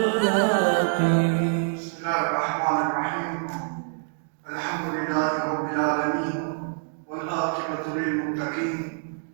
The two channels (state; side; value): silent; left; 61 dB below the other